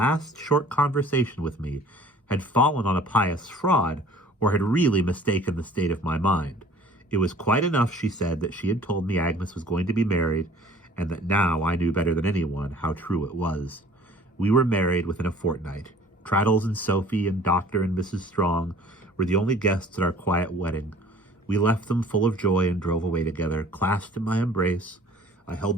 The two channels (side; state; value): both; normal; correlation 0.50